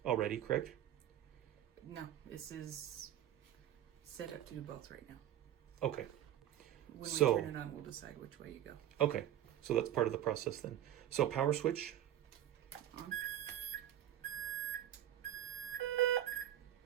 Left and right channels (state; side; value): quieter; left; 11.8 dB